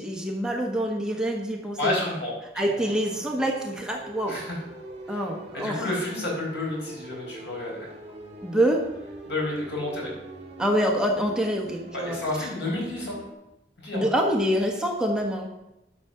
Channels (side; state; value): both; normal; correlation 0.56